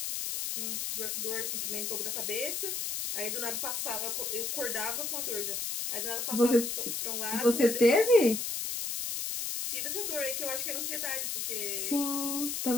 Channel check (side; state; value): left; noise; hiss, 2 dB below the sound